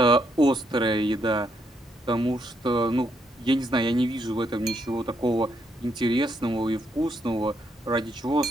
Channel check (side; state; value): both; normal; correlation 0.76